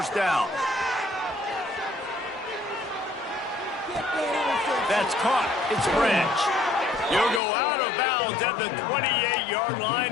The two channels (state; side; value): drops out; right; at 7.4 s